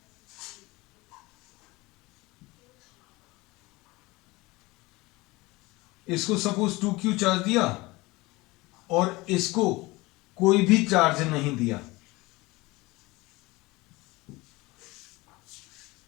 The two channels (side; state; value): right; quieter; 22.0 dB